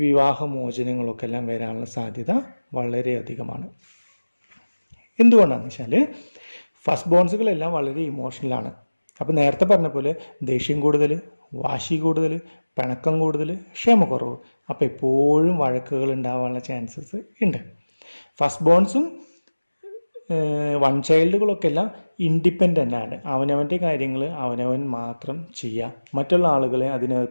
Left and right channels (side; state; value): both; inverted; correlation -1.00